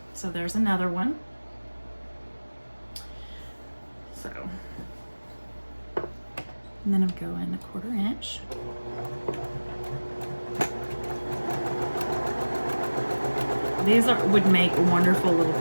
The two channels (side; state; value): both; inverted; correlation -1.00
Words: So there's another one. So, and then I'm going 1/4 inch. These would make wonderful little